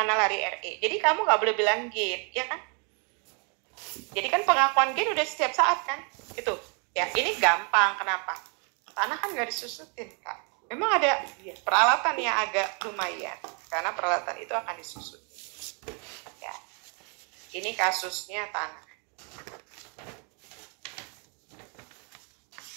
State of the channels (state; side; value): quieter; left; 37.0 dB